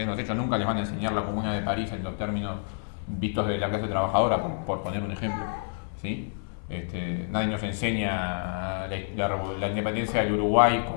los hechos, nunca les van a enseñar la Comuna de París en los términos vistos de la clase trabajadora, por poner un ejemplo, ¿sí? Nadie nos enseña la independencia del Uruguay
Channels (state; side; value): silent; right; digital silence